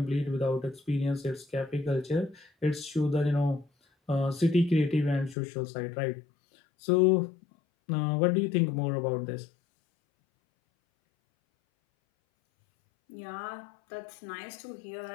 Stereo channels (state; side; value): drops out; right; at 5.4 s